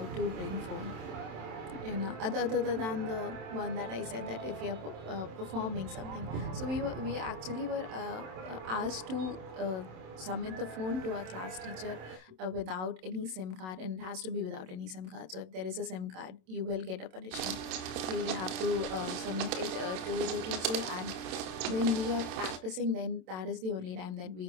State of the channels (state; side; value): late; left; 27 ms